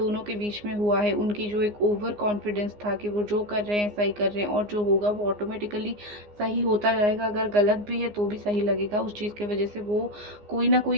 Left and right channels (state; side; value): late; left; 14 ms